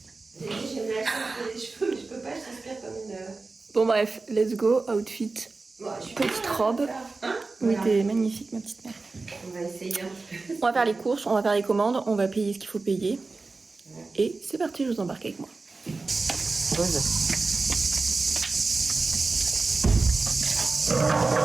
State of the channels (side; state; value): left; quieter; 3.8 dB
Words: J'ai dit, j'ai mal les cheveux, mais je peux pas, je transpire comme une... Bon bref, let's go, outfit. Bon, Petite robe. Hein, Oui, voilà. t'es magnifique, ma petite mère. On va essayer un petit peu. On va faire les courses, on va faire les commandes, on va payer ce qu'il faut payer. Et c'est parti, je vous embarque avec moi. Pose. Quand